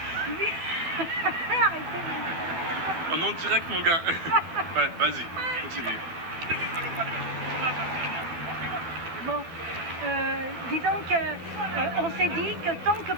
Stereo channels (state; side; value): late; left; 12 ms